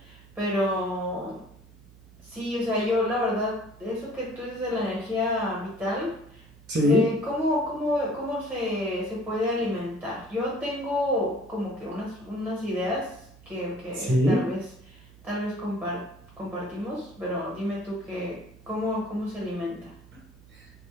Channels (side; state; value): right; noise; hum, 22 dB below the sound